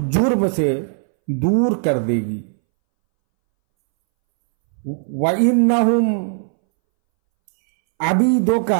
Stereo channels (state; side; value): silent; left; 65 dB below the other